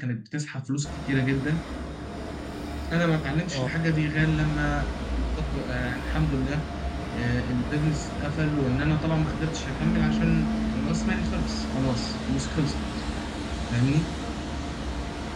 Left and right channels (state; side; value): identical; both; correlation 1.00